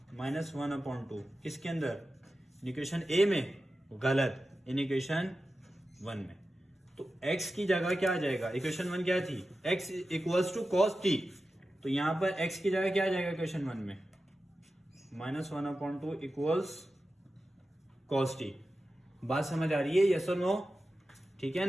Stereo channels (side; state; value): both; normal; correlation 0.93